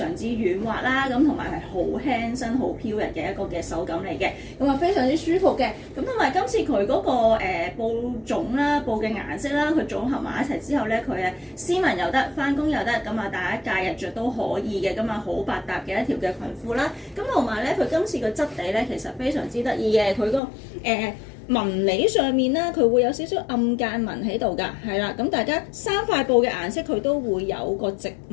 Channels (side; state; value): right; drops out; at 20.4 s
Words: 之軟滑啦，咁同埋係好輕身、好飄逸嘅一個嘅手感嚟嘅。咁啊，非常之舒服嘅。咁同埋今次佢嗰個布種啦、布嘅顏色啦，佢組合埋一齊之後咧，佢係斯文又得，翻工又得，咁啊大家假日着都可以嘅。咁啊好百搭嘅一條嘅裙褲啦。咁同埋咧，佢今次個質地咧其實非常之得意嘅。佢個紋理上面咧，佢會有少少暗間紋喺度㗎，係啦。咁大家三塊布嘅顏色佢都會有個直